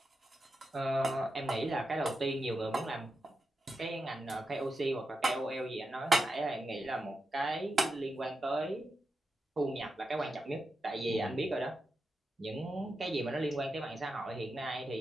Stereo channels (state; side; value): normal; both; correlation 0.88